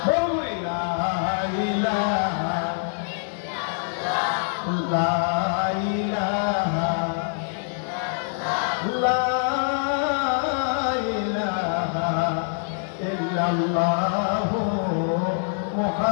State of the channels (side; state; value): right; silent; digital silence